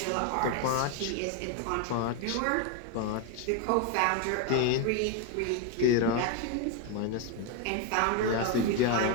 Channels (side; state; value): both; different; correlation 0.02